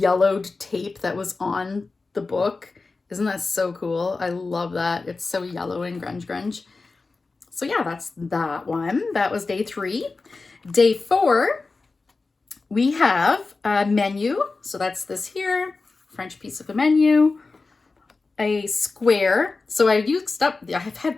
tape that was on the book. Isn't that so cool? I love that. It's so yellow and grunge. So yeah, that's that one. That was day 3. Day 4, we have a menu. So that's this here, French piece of a menu. A square. So I've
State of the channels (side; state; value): right; quieter; 3.9 dB